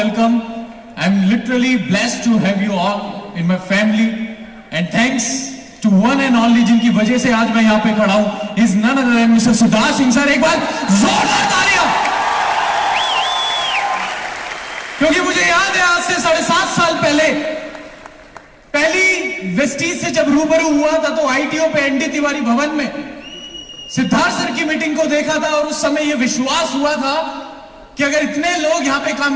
I'm literally blessed to have you all in my family, and thanks to one and only जिनकी वजह से आज मैं यहाँ पे खड़ा हूँ, is none other than Mr. Siddharth Singh sir. एक बार जोरदार तालियां. क्योंकि मुझे याद है आज से 7.5 साल पहले पहली वेस्टीज से जब रूबरू हुआ था तो आईटीओ पे एनडी तिवारी भवन में सिद्धार्थ सर की मीटिंग को देखा था, और उस समय यह विश्वास हुआ था कि अगर इतने लोग यहां पे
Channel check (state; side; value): identical; both; correlation 1.00